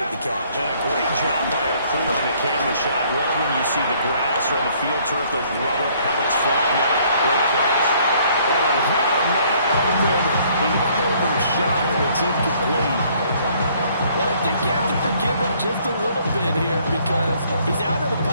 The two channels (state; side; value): inverted; both; correlation -0.62